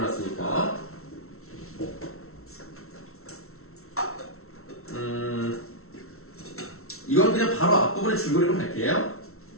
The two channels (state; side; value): late; right; 0.63 ms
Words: 이건 그냥 바로 앞부분에 줄거리로 갈게요.